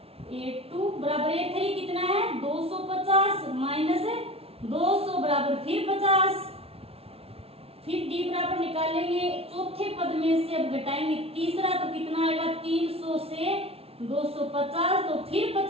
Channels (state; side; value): late; left; 0.29 ms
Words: A2 बराबर A3 कितना है 250 - 200 बराबर फिर 50, फिर D बराबर निकालेंगे, चौथे पद में से अब घटाएंगे तीसरा, तो कितना आएगा 300 से 250, तो फिर